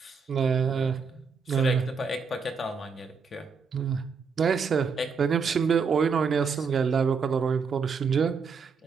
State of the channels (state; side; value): quieter; left; 5.5 dB